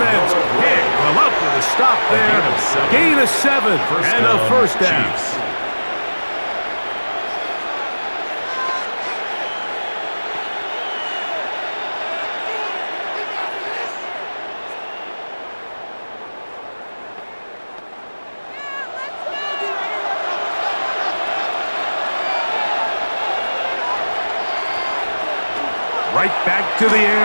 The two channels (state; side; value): inverted; both; correlation -1.00